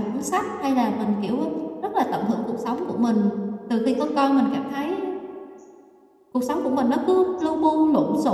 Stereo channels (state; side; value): identical; both; correlation 1.00